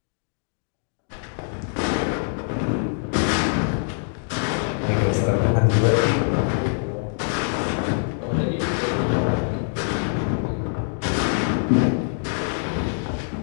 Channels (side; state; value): right; silent; digital silence